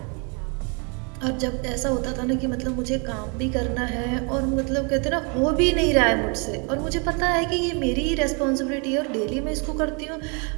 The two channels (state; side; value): quieter; left; 34.6 dB